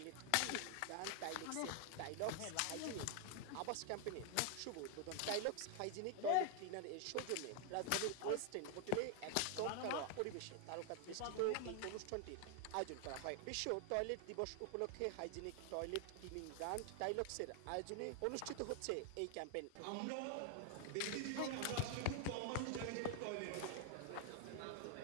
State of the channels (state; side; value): different; both; correlation 0.00